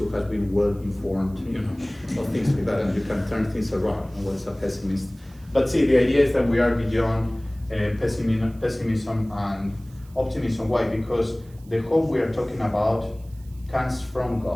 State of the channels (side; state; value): right; noise; hiss, 28 dB below the sound